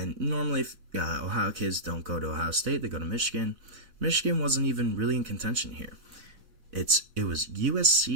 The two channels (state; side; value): late; left; 4.0 ms